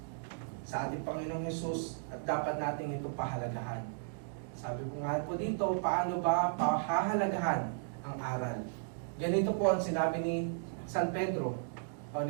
Sa ating Panginoong Hesus, at dapat natin ito pahalagahan. Sabi ko nga po dito, paano ba pahahalagahan ang aral? Ganito po ang sinabi ni San Pedro, o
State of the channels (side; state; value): left; silent; digital silence